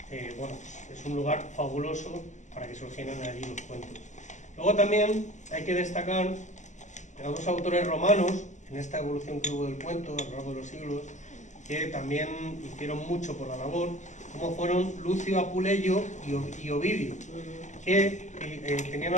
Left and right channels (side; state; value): right; late; 0.35 ms